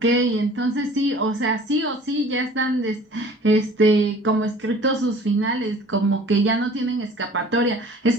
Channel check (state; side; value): normal; both; correlation 0.48